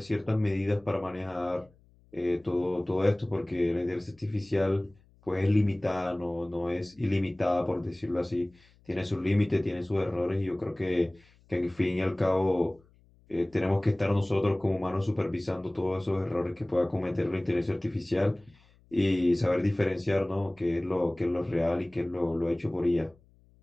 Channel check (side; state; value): left; noise; hum, 30 dB below the sound